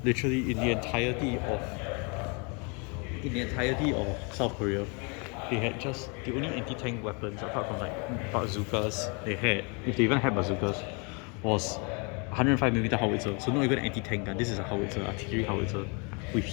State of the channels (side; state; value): right; quieter; 33.2 dB